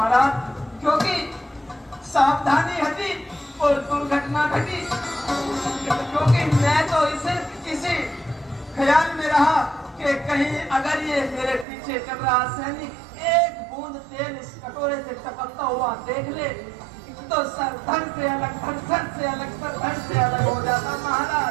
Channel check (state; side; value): drops out; left; at 11.7 s